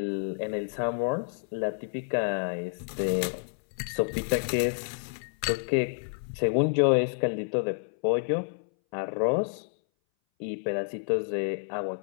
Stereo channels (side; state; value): right; silent; 59 dB below the other